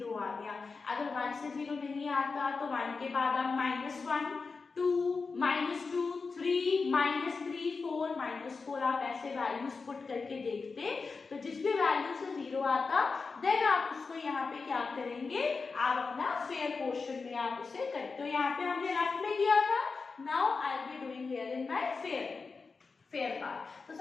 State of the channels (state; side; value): quieter; right; 4.5 dB